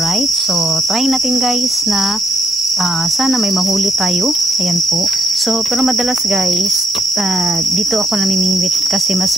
so try natin guys na sana may mahuli tayo. Ayan po. So pero madalas guys, dito ako namimingwit kasi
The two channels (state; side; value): normal; both; correlation 0.74